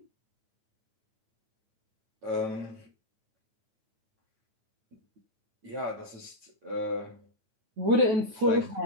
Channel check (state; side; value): late; left; 9.2 ms